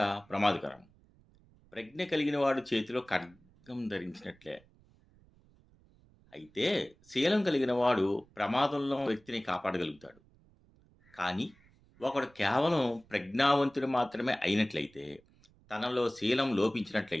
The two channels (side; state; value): right; noise; rumble, 29 dB below the sound